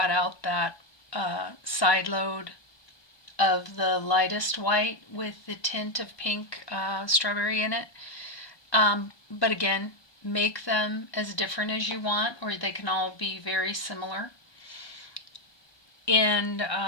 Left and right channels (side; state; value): right; late; 1.2 ms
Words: out that side load of the lightest white with the tint of pink strawberry in it. But again, make them as different as you want, or they can all be very similar. And